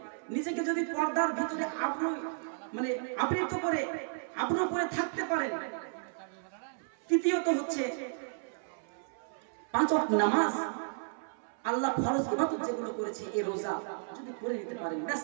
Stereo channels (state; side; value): silent; left; 56 dB below the other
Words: নিজেকে যদি পর্দার ভিতরে আবৃত করে আবরু করে থাকতে পারেন। তৃতীয়ত হচ্ছে 5 ওয়াক্ত নামাজ, আল্লাহ ফরজ ইবাদত যেগুলো করেছে, এই রোজা যদি করে নিতে পারেন, ব্যাস